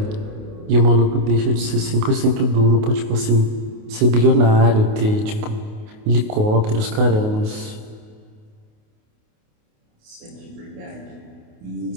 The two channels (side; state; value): left; late; 28 ms